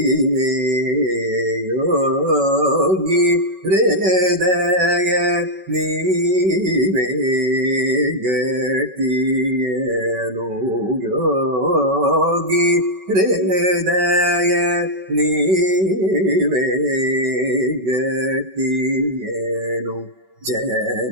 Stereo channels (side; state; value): left; late; 5.2 ms